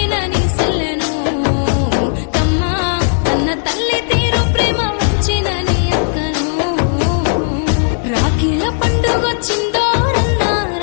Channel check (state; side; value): silent; right; digital silence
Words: నీ సెల్లెను తమ్మా అన్న తల్లి తీరు ప్రేమ ముంచిన నీ అక్కను రాఖీల పండుగొచ్చిందో రన్నా